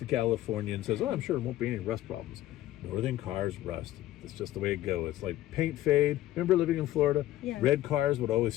California, and says, oh, I'm sure there won't be any rust problems. Northern cars rust. It's just the way it goes. It's like paint fade. Remember living in Florida? Yeah. Red cars would always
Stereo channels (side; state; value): right; quieter; 14.6 dB